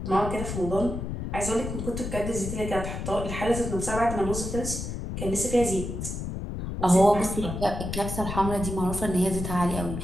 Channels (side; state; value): left; noise; rumble, 5 dB below the sound